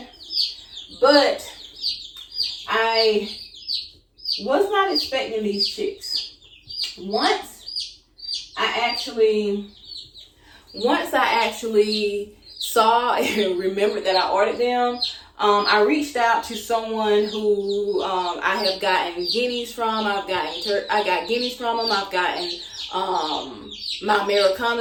But I Was not expecting these chicks. Once I actually saw and remembered that I ordered them, I reached out to someone who I have gotten guineas from. I got guineas from him. I've gotten my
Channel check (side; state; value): both; identical; correlation 1.00